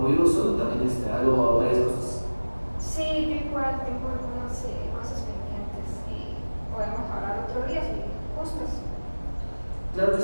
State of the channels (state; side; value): inverted; both; correlation -1.00